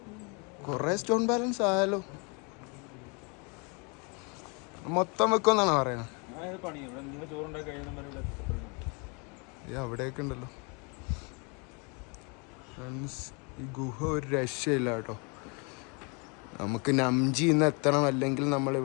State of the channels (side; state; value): right; quieter; 32.8 dB